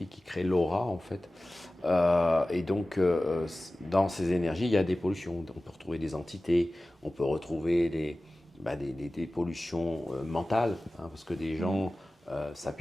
qui créent l'aura, en fait. Et donc, dans ces énergies, il y a des pollutions. On peut retrouver des entités, on peut retrouver des pollutions mentales, hein, parce que des gens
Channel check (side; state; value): both; normal; correlation 0.97